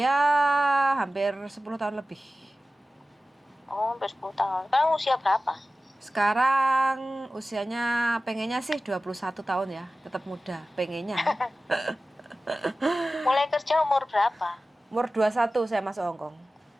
hampir 10 tahun lebih. Oh, hampir 10 tahun. Sekarang usia berapa? Sekarang usianya pengennya sih 21 tahun ya, tetap muda, pengennya. Mulai kerja umur berapa? Umur 21 saya masuk Hong Kong.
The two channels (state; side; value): normal; both; correlation 0.96